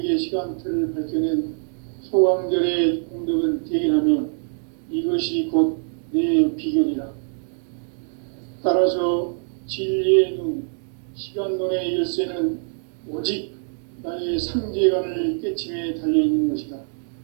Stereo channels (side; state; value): left; silent; 59 dB below the other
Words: 시간틀을 밝혀낸 소강절의 공덕은 대견하며 이것이 곧 내 비결이라. 따라서 진리의 눈, 시간론의 열쇠는 오직 나의 삼재간을 깨침에 달려있는 것이다.